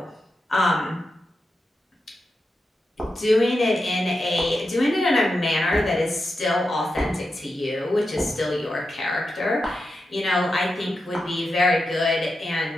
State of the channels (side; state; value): both; normal; correlation 0.89